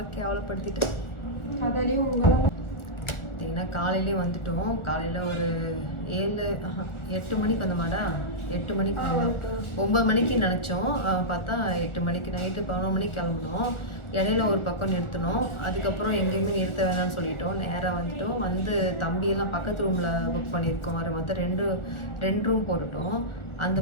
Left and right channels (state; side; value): late; right; 1.4 ms